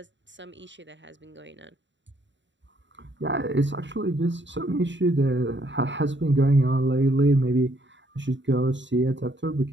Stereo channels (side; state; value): left; late; 0.53 ms